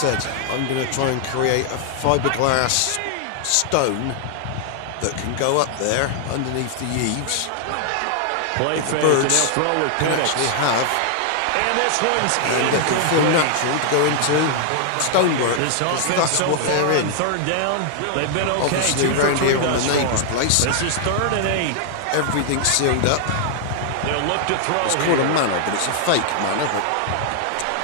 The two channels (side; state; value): both; different; correlation -0.01